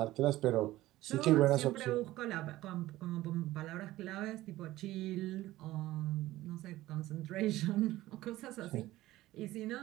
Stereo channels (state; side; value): quieter; left; 16.4 dB